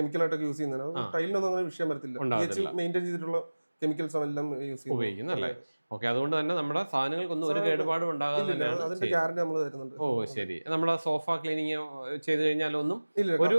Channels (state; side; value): inverted; both; correlation -1.00